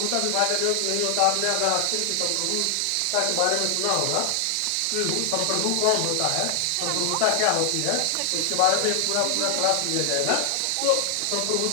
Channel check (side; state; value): both; different; correlation 0.00